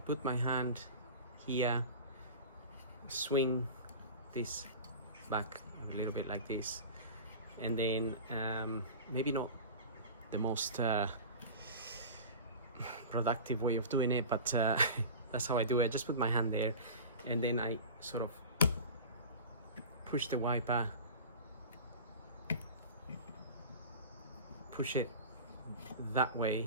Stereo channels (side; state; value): both; inverted; correlation -0.33